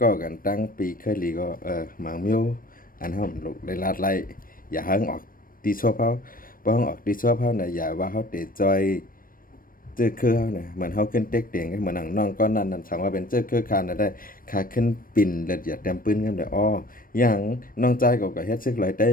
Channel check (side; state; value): right; late; 0.41 ms